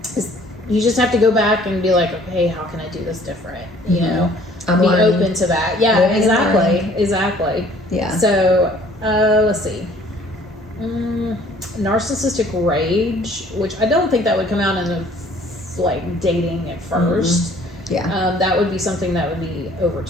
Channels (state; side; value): normal; both; correlation 0.56